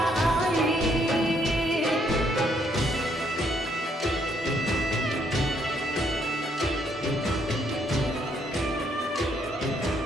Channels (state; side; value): normal; both; correlation 0.71